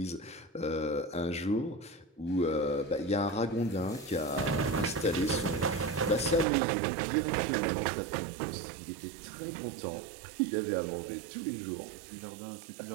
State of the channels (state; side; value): drops out; left; at 6.5 s